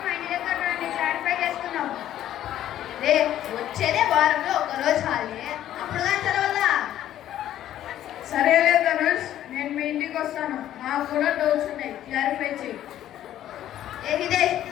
మా ఇంటి దగ్గర రండి, క్లారిఫై చేసుకుందాం. వచ్చేదే వారంలో ఒక రోజు హాలిడే, అప్పుడు కానీ చదవాలా? సరేలే ధనుష్, నేను మీ ఇంటికి వస్తాను. నాకు కూడా డౌట్స్ ఉన్నాయి, క్లారిఫై చేయి. హిదేష్,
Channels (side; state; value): right; quieter; 12.1 dB